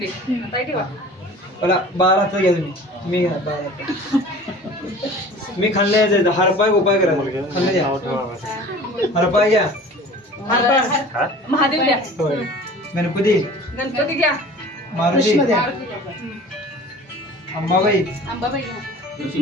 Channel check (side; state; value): both; normal; correlation 0.42